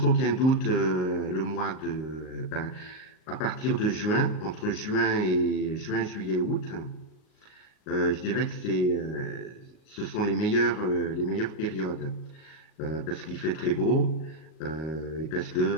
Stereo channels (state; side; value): late; right; 38 ms